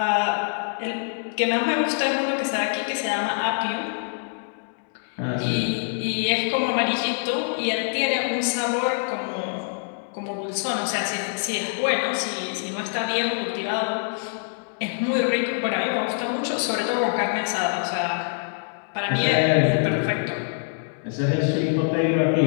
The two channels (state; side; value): silent; right; digital silence